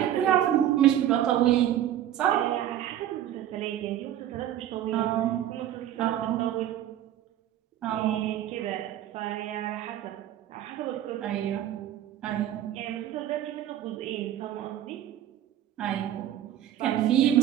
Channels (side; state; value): left; quieter; 11.7 dB